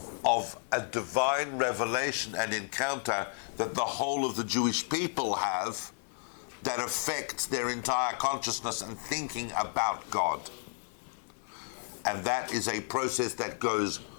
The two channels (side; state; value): right; silent; 56 dB below the other